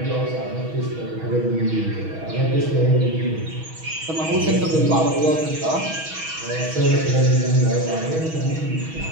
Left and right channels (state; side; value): late; left; 6.3 ms